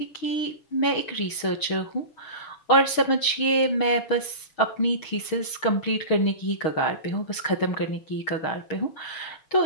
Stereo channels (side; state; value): right; late; 6.4 ms